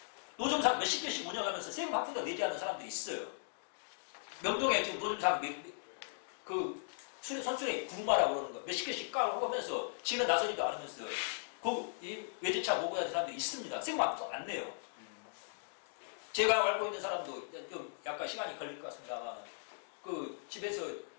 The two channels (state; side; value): silent; right; digital silence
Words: 노점상 몇십 개씩 운영하면서 세금 한 푼도 내지 않는 사람들이 있어요. 명동에 지금 노점상 선수의 구루마라고 그러는 거 몇십 개씩 까고 하면서 지는 나서지도 않으면서 이 외제차 모고 하는 사람들이 있습니다. 세금 한 푼도 안 내요. 제가 알고 있는 사람도 좀 약간 시간이 걸릴 것 같습니다만 그 집에서